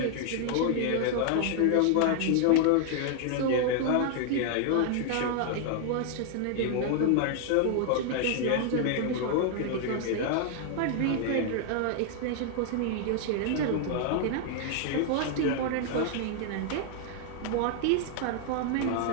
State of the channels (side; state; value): both; different; correlation 0.00